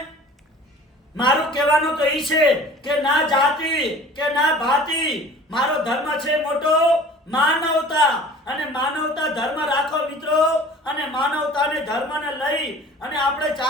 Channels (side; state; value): both; normal; correlation 0.45